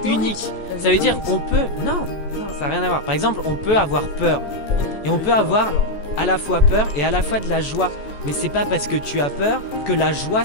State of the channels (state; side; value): late; right; 14 ms